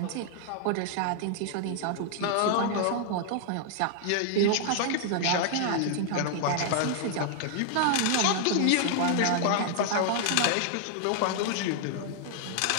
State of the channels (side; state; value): both; different; correlation 0.00